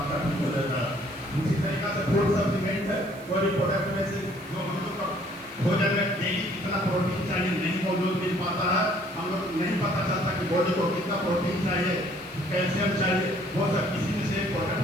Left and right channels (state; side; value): noise; right; hiss, 24 dB below the sound